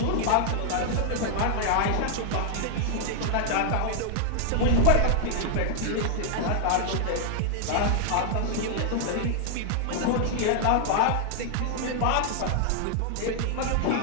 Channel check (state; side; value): different; both; correlation 0.00